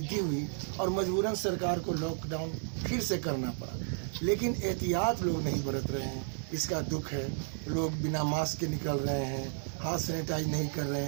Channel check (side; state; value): left; silent; 56 dB below the other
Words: हुई और मजबूरन सरकार को लॉकडाउन फिर से करना पड़ा। लेकिन एहतियात लोग नहीं बरत रहे हैं, इसका दुख है। लोग बिना मास्क के निकल रहे हैं, हाथ सैनिटाइज नहीं कर रहे